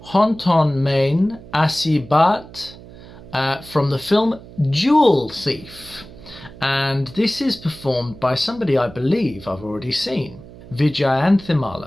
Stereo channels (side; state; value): right; noise; hum, 18 dB below the sound